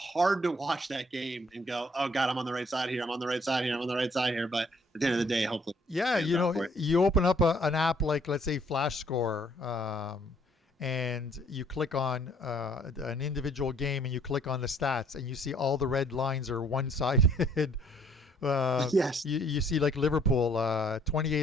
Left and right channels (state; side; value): normal; both; correlation 0.62